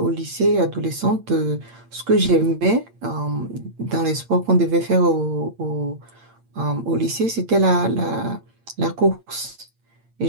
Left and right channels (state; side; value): late; left; 8.7 ms